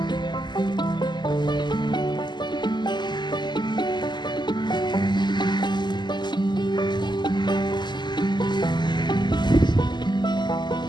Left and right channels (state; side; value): late; right; 0.21 ms